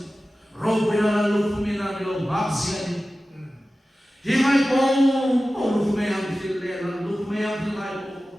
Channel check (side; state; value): both; normal; correlation 0.95